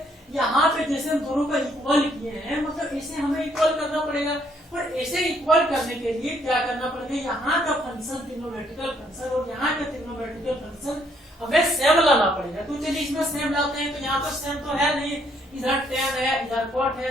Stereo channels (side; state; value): both; normal; correlation 0.68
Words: यहाँ पे जैसे हम दोनों का इक्वल किए हैं, मतलब इसे हमें इक्वल करना पड़ेगा, पर ऐसे इक्वल करने के लिए क्या करना पड़ेगा, यहाँ का फंक्शन ट्रिग्नोमेट्रिकल फंक्शन और यहाँ का ट्रिग्नोमेट्रिकल फंक्शन हमें सेम लाना पड़ेगा। तो चलिए इसमें सेम लाते हैं, तो यहाँ पर सेम तो है नहीं, इधर 10 है इधर cot